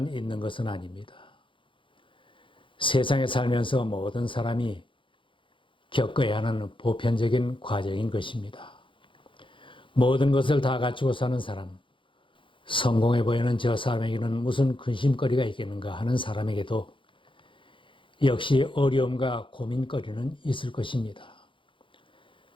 있는 것은 아닙니다. 세상에 살면서 모든 사람이 겪어야 하는 보편적인 과정인 것입니다. 모든 것을 다 갖추고 사는 사람, 성공해 보이는 저 사람에게는 무슨 근심거리가 있겠는가 하는 사람에게도 역시 어려움과 고민거리는 있을 것입니다.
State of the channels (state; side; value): late; right; 0.25 ms